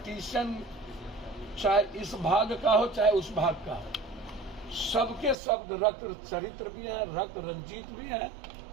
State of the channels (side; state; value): left; drops out; at 5.4 s